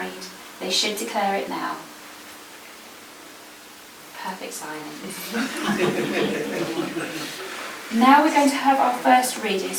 they should declare it now. Perfect silence. Now we're going to have our first reading.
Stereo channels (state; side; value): identical; both; correlation 1.00